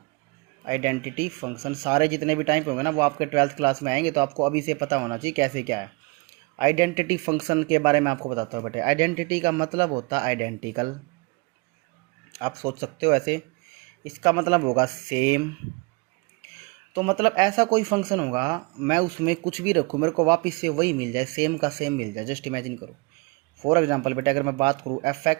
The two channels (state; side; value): quieter; left; 28.5 dB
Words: आइडेंटिटी फंक्शन सारे जितने भी टाइप होंगे ना वो आपके 12th क्लास में आएंगे, तो आपको अभी से पता होना चाहिए कैसे क्या है। आइडेंटिटी फंक्शन के बारे में आपको बताता हूँ बेटे। आइडेंटिटी का मतलब होता है आइडेंटिकल। आप सोच सकते हो ऐसे, इसका मतलब होगा सेम। तो मतलब ऐसा कोई फंक्शन होगा, मैं उसमें कुछ भी रखूँ मेरे को वापस से वही मिल जाए, सेम का सेम मिल जाए। जस्ट इमेजिन करो। फॉर एग्जाम्पल बेटे, अगर मैं बात करूँ F